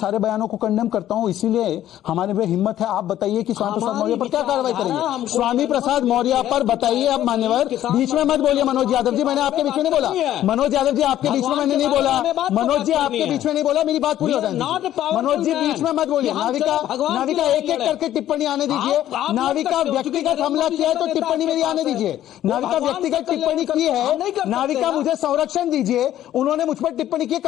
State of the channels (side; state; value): right; quieter; 12.4 dB